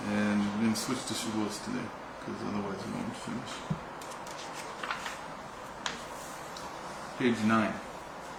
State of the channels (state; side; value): identical; both; correlation 1.00